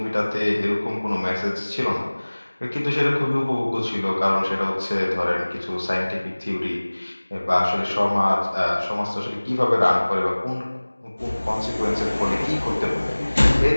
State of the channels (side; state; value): both; inverted; correlation -1.00